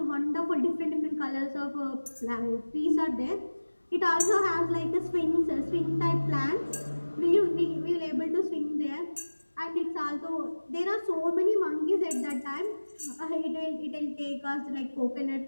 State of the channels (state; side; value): inverted; both; correlation -1.00